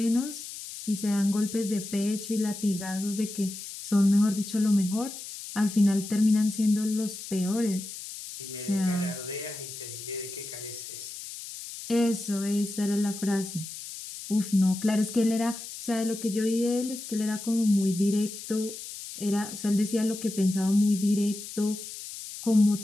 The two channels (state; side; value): noise; left; hiss, 11 dB below the sound